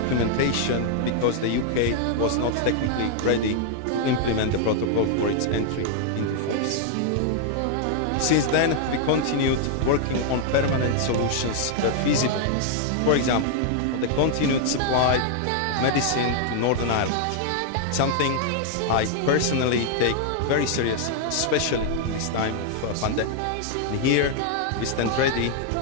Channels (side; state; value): both; different; correlation 0.00